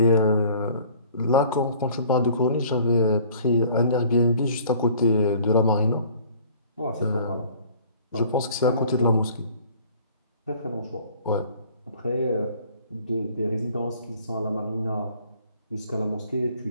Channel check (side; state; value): both; inverted; correlation -0.52